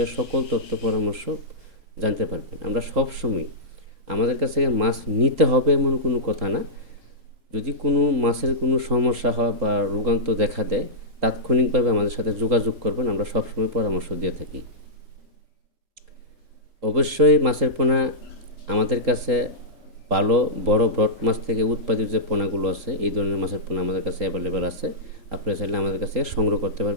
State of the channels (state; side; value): late; left; 3.7 ms